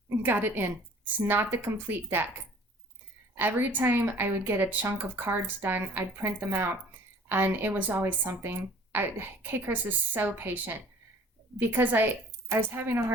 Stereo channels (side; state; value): both; normal; correlation 0.50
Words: it in. It's not the complete deck. Every time I would get a chunk of cards done, I'd print them out, and it was always something. K. Chris is so patient because I was having a